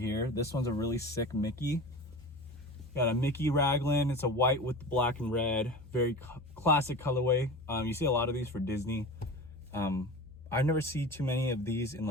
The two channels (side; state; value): both; normal; correlation 0.32